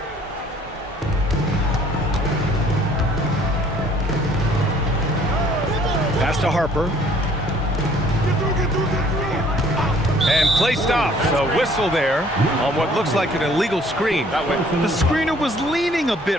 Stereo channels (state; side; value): normal; both; correlation 0.58